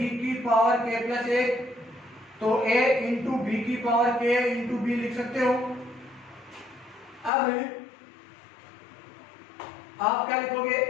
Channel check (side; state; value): right; drops out; at 7.3 s